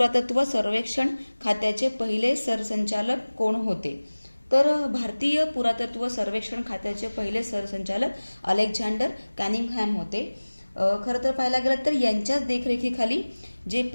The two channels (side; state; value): both; inverted; correlation -1.00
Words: सर्वेक्षण खात्याचे पहिले सरसंचालक कोण होते? तर भारतीय पुरातत्व सर्वेक्षण खात्याचे पहिले सरसंचालक अलेक्झांडर कॅनिंगहॅम होते. खरं तर पाहायला गेलं तर यांच्याच देखरेखीखाली जे